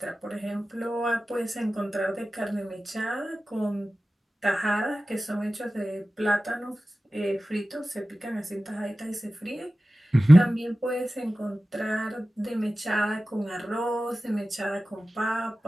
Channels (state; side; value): normal; both; correlation 0.96